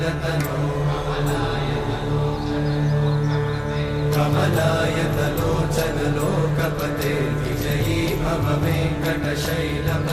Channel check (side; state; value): both; identical; correlation 1.00